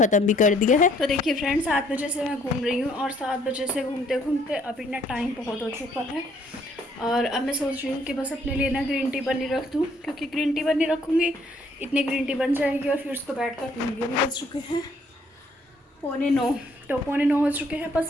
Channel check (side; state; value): both; normal; correlation 0.65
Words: भी कर दिया है। तो देखिए फ्रेंड्स, 7 बजे से मैं घूम रही हूँ और 7 बजे से घूमते घूमते अभी ना टाइम बहुत हो चुका है। और अब मैं सोच रही हूँ कि बस अपने लिए ना ग्रीन टी बनी रख दूँ, क्योंकि ग्रीन टी बनी रखूँगी इतनी ग्रीन टी बन जाएगी और फिर उसको बैठ कर पीएंगे। अभी बज चुके हैं 8:45, तो 8:45 हो चुके हैं, बस